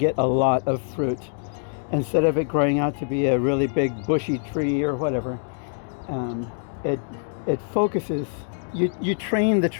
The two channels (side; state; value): right; silent; digital silence